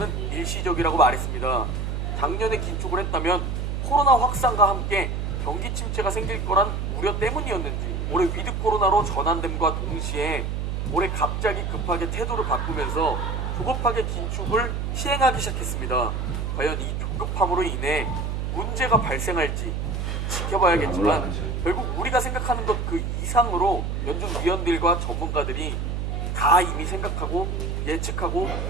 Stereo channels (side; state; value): right; noise; hum, 2 dB below the sound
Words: 일시적이라고 말했습니다. 작년에 긴축을 했다면 코로나 확산과 함께 경기 침체가 생길 거란 우려 때문이었는지, 올해 위드 코로나로 전환됨과 동시에 올해 갑자기 급하게 태도를 바꾸면서 조급하게 긴축을 시행하기 시작했습니다. 과연 이 조급함으로 인해 문제가 발생할지 지켜봐야겠지만 결국 우리가 생각하는 것 그 이상으로 연준 위원들과 전문가들이 다 이미 생각하고 예측하고